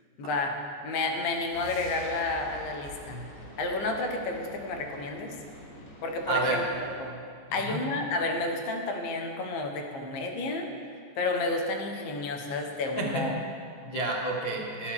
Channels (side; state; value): right; late; 15 ms